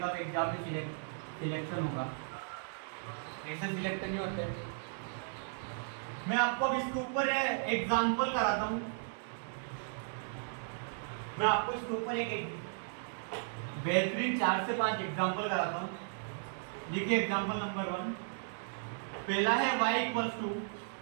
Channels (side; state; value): left; silent; digital silence